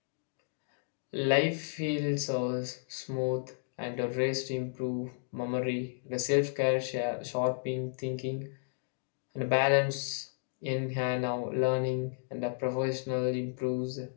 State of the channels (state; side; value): silent; right; digital silence